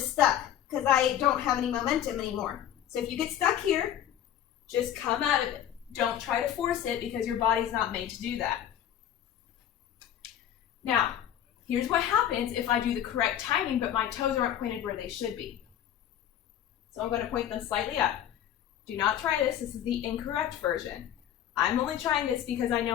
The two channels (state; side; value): quieter; right; 10.7 dB